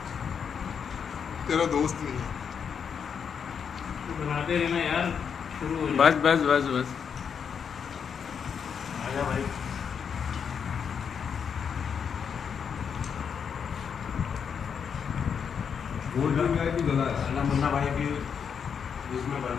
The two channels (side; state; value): right; quieter; 7.0 dB